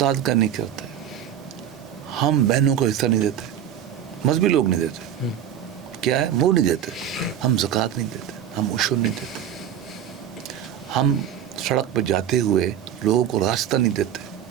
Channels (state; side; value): quieter; left; 9.8 dB